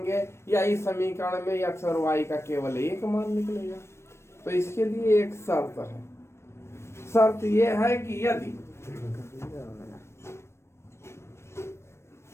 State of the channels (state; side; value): late; right; 0.13 ms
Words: या इस समीकरण में x और y का केवल एक मान निकलेगा। तो इसके लिए एक शर्त है। शर्त यह है कि यदि